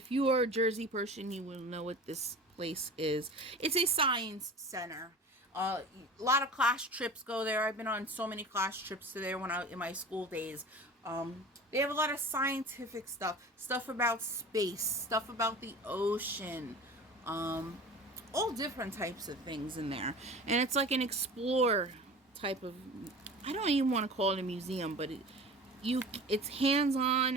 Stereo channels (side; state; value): both; normal; correlation 0.37